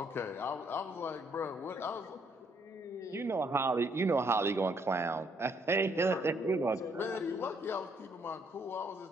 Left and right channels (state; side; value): normal; both; correlation 0.69